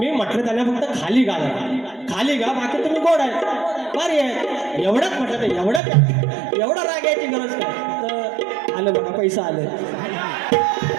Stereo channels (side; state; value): left; drops out; at 5.8 s